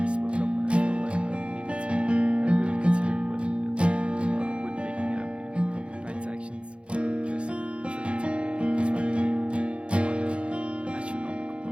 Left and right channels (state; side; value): late; left; 0.058 ms